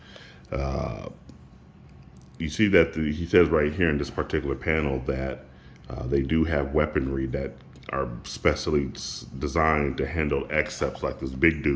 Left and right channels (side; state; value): both; identical; correlation 1.00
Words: You see that he says right here in this particular panel that they do have weaponry that are specially designed to handle Excepts, like this big